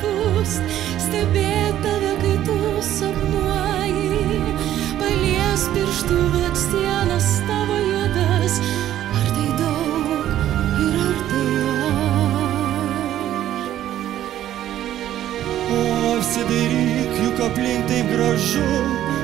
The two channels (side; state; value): left; quieter; 12.2 dB